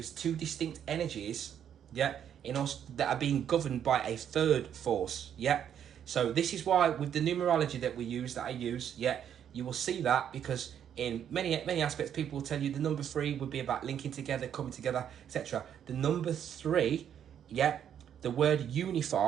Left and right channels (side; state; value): left; quieter; 9.2 dB